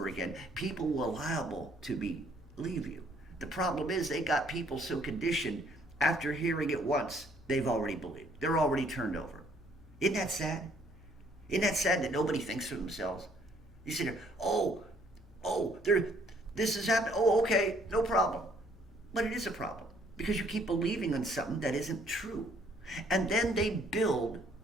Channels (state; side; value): normal; both; correlation 0.63